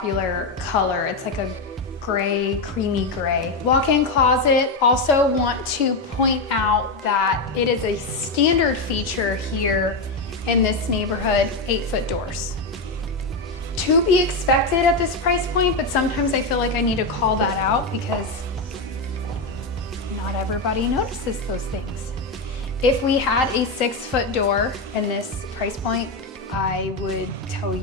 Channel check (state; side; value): quieter; right; 3.1 dB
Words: color. It's like a gray, creamy gray. Walk-in closet. Also want to point out that it is a standard feature here in this neighborhood, 8-foot doors. To be expected at this price point, but sometimes I feel like I need to call that out because not everybody notices those things. If we had a 6-foot door in this price point, I would tell